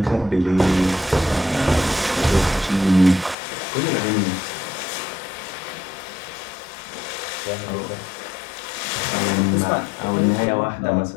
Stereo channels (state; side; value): drops out; right; at 3.4 s